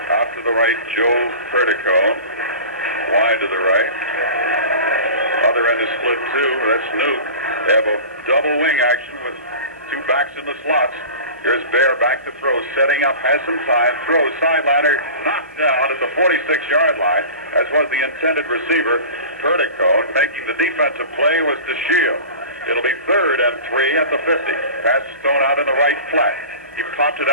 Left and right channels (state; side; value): inverted; both; correlation -0.36